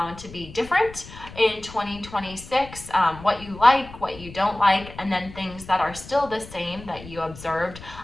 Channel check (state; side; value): noise; left; rumble, 16 dB below the sound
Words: to be different in 2026, what you like, what you don't like, and then things that are still the same that you observed.